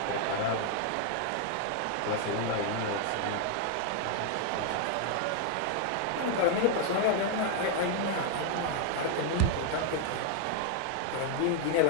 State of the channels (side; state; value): both; different; correlation 0.00